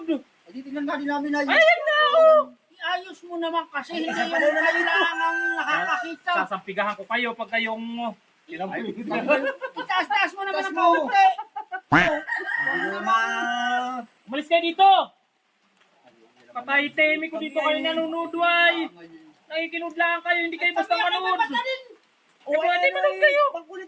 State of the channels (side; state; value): both; identical; correlation 1.00